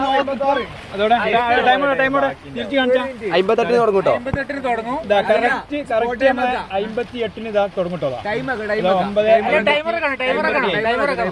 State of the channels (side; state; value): both; identical; correlation 1.00